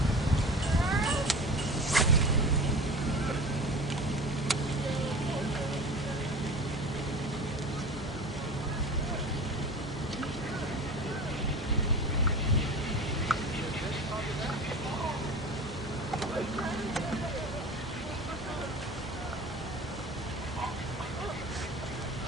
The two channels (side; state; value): both; normal; correlation 0.35